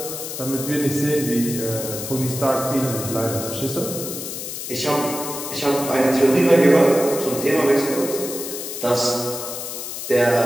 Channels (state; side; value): noise; left; hiss, 7 dB below the sound